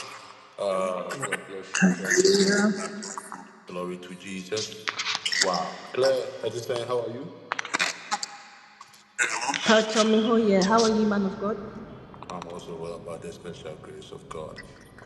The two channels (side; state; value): both; identical; correlation 1.00